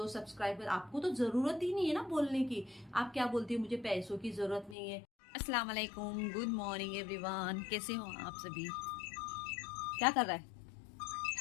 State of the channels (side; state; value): right; drops out; at 4.8 s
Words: सब्सक्राइबर, आपको तो जरूरत ही नहीं है ना बोलने की। आप क्या बोलती हो, मुझे पैसों की जरूरत नहीं है। अस्सलाम वालेकुम, गुड मॉर्निंग एवरीवन, कैसे हो आप सभी? क्या कर रहा है?